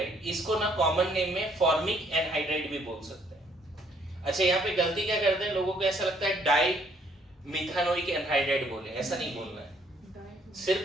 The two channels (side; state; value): both; normal; correlation 0.65